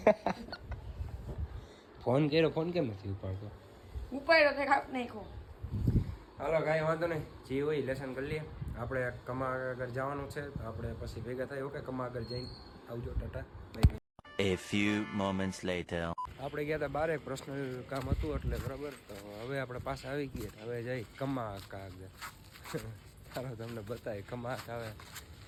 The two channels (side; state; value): both; identical; correlation 1.00